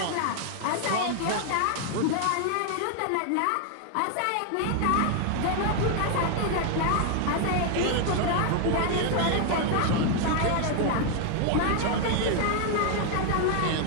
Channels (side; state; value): both; different; correlation 0.00